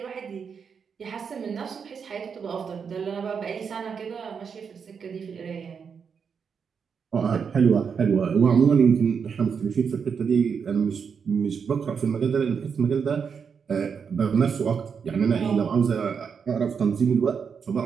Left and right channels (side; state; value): left; quieter; 6.4 dB